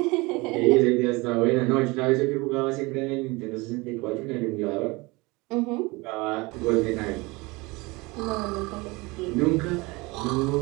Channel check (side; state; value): left; quieter; 24.3 dB